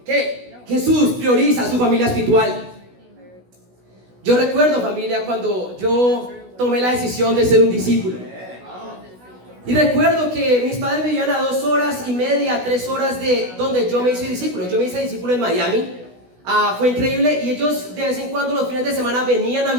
que Jesús prioriza a su familia espiritual. Yo recuerdo, familia, cuando yo tomé la decisión de ser un discípulo. Y recuerdo que mis padres vivían a 2 horas y media, 3 horas de donde yo me hice discípulo. Yo me hice discípulo en Miami. Fue increíble y ellos de vez en cuando los fines de semana venían a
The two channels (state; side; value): late; left; 16 ms